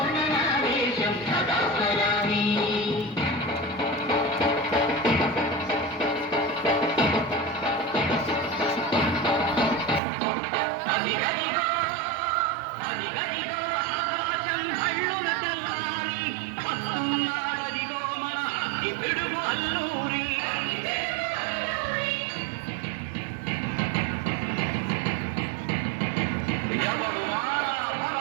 నా దేశం సదా స్మరామి అదిగదిగో అదిగదిగో ఆకాశం హళ్ళున తెల్లారి వస్తున్నాడదిగో మన అగ్గి పిడుగు అల్లూరి ఎవడు మారా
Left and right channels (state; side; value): drops out; left; at 10.0 s